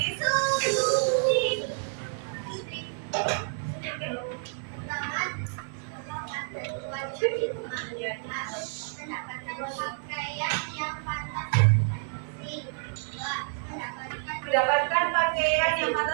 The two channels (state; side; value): silent; left; 59 dB below the other